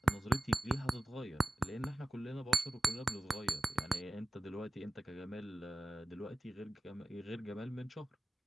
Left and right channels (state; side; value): normal; both; correlation 0.94